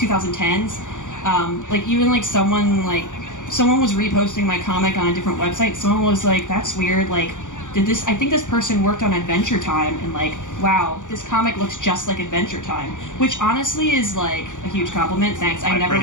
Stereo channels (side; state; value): right; late; 0.86 ms